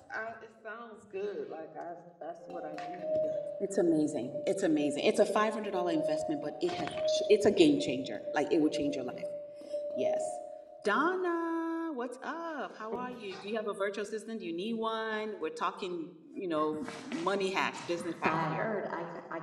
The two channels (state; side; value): identical; both; correlation 1.00